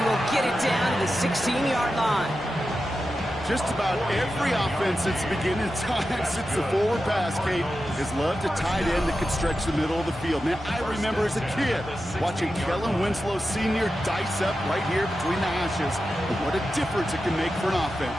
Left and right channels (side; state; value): both; normal; correlation 0.91